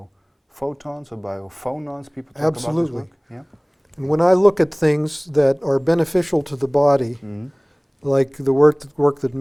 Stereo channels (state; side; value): identical; both; correlation 1.00